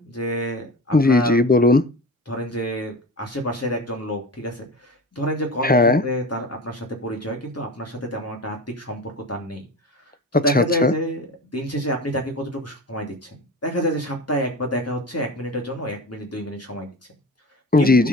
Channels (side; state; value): both; normal; correlation 0.33